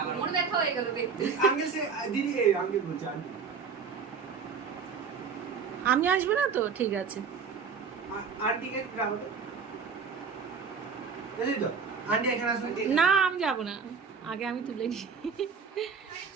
মনে দেখা হয়ে গেল দেখতে আঙ্কেল সে দিদি আঙ্কেল বলছে আন্টি আমি আসবো না তো ঠিক আছে আন্টি কে রাখো এই তো আন্টি এখানে আসলে না আমি যাবো না আগে আমি তুলে নিই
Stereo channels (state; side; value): quieter; left; 5.7 dB